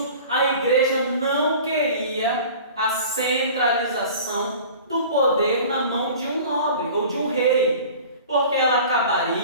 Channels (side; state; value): both; inverted; correlation -0.42